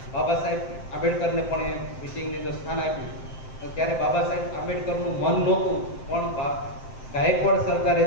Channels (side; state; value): right; late; 7.7 ms